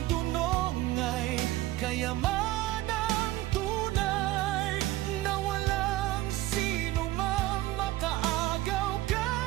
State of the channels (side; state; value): left; quieter; 16.5 dB